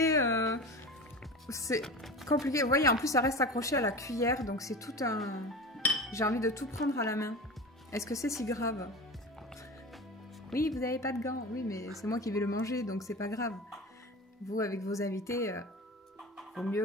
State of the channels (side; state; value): both; normal; correlation 0.31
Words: c'est compliqué. Vous voyez, en plus, ça reste accroché à la cuillère. Donc, c'est tout un... J'ai envie de tout prendre à la main. Est-ce que c'est si grave? Oui, vous n'avez pas de gants. Oui, mais c'est moi qui vais le manger, donc c'est pas grave. Vous, avec vos invités, vaut